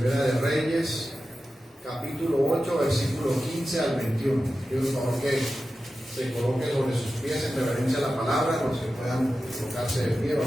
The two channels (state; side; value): normal; both; correlation 0.93